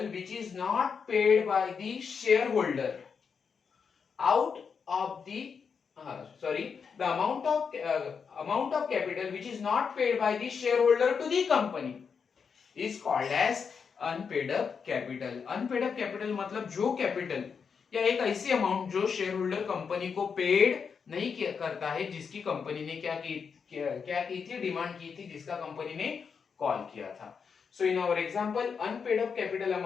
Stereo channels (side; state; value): right; quieter; 6.1 dB